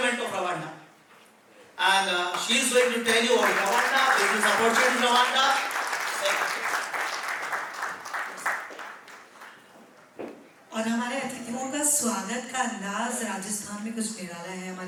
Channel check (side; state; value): both; identical; correlation 1.00